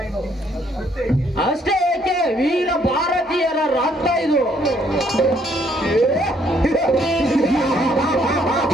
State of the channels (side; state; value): both; normal; correlation 0.67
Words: ಅಷ್ಟೇ ಏಕೆ ವೀರ ಭಾರತೀಯರ ರಕ್ತ ಇದು.